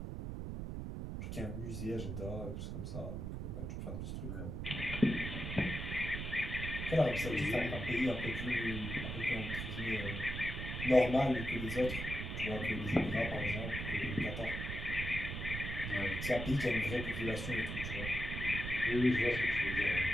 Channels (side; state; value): right; noise; rumble, 5 dB below the sound